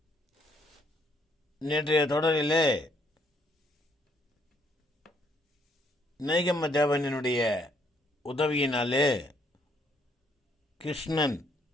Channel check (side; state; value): both; normal; correlation 0.69